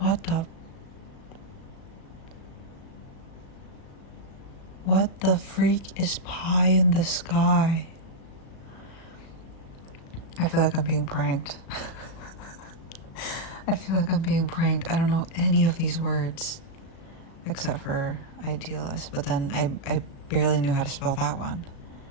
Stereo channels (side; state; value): right; late; 36 ms